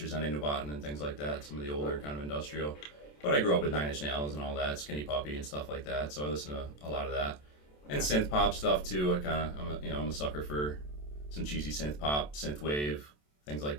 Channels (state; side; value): late; right; 27 ms